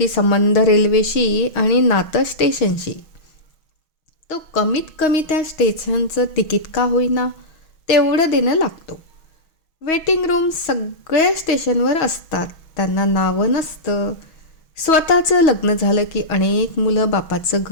संबंध रेल्वेशी आणि नातं स्टेशनशी. तो कमीत कमी त्या स्टेशनचं तिकीट का होईना तेवढं देणं लागतो. वेटिंग रूम सगळ्या स्टेशनवर असतात, त्यांना नावं नसतं. स्वतःचं लग्न झालं की अनेक मुलं बापाचं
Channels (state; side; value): late; right; 6.3 ms